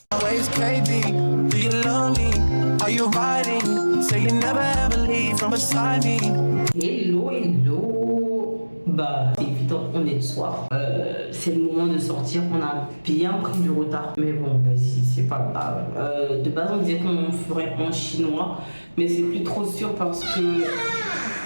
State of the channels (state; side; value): inverted; both; correlation -1.00